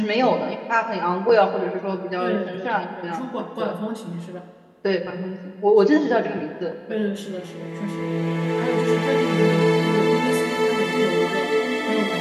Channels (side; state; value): both; identical; correlation 1.00